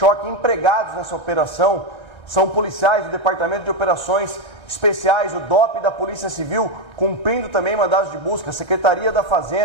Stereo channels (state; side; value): late; right; 1.9 ms